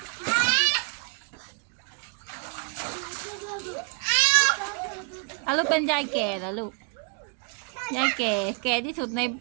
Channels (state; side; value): quieter; left; 36.0 dB